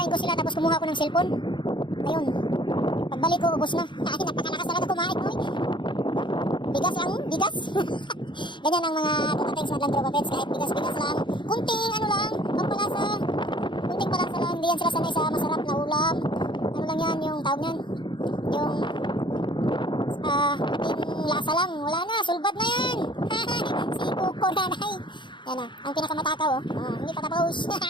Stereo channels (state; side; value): late; right; 0.23 ms